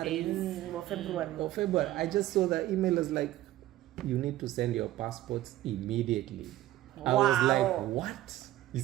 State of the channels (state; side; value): quieter; left; 14.8 dB